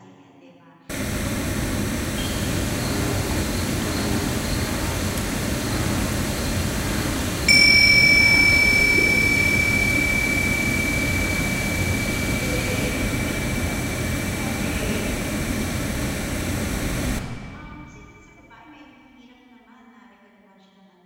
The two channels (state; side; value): identical; both; correlation 1.00